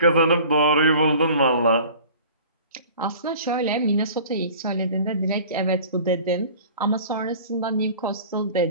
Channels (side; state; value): both; inverted; correlation -0.45